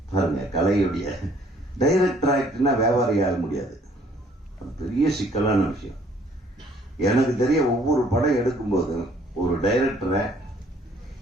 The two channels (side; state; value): both; normal; correlation 0.61